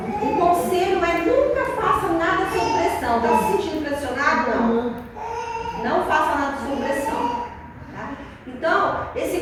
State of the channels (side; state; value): both; identical; correlation 1.00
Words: o conselho é nunca faça nada sob pressão. Está se sentindo pressionado? Não. Não faça nada sob pressão. Tá? Então, esse